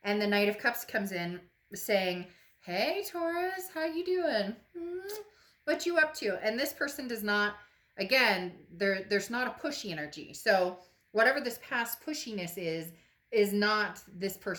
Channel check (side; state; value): both; identical; correlation 1.00